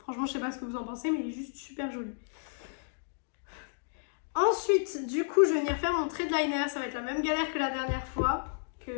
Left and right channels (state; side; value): silent; right; digital silence